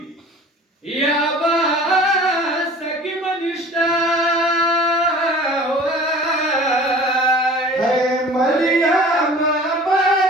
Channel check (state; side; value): normal; both; correlation 0.44